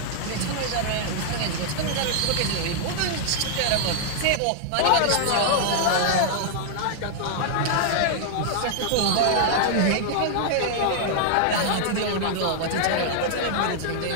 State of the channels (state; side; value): different; both; correlation -0.01